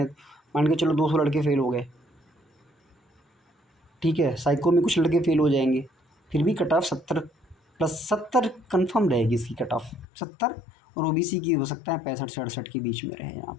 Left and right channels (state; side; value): drops out; right; at 10.1 s